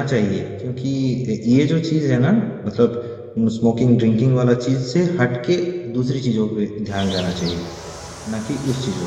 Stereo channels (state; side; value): identical; both; correlation 1.00